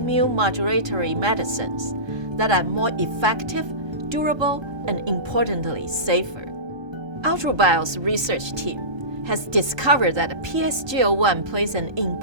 modulatory medicines that are more effective, durable, and importantly, safer. AltruBio's research team has discovered that PSGL-1 plays an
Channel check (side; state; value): left; late; 1.3 ms